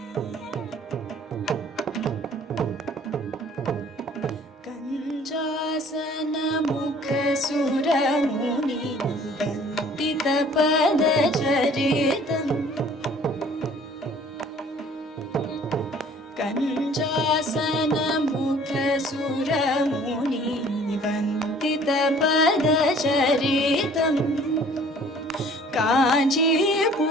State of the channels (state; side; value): normal; both; correlation 0.53